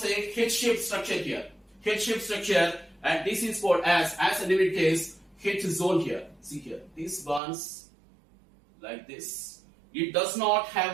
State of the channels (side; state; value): left; drops out; at 7.4 s